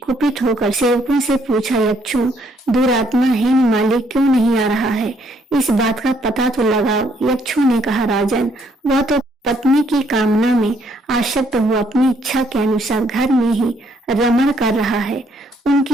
कुपित होकर सेवकों से पूछा, यक्षों, दुरात्मा हेममाली क्यों नहीं आ रहा है? इस बात का पता तो लगाओ। यक्षों ने कहा, राजन, वह तो पत्नी की कामना में आसक्त हुआ अपनी इच्छा के अनुसार घर में ही रमण कर रहा है।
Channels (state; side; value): normal; both; correlation 0.69